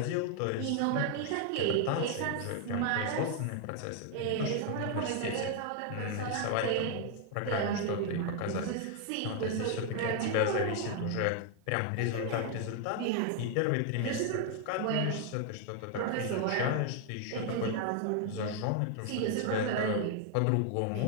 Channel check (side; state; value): both; different; correlation 0.00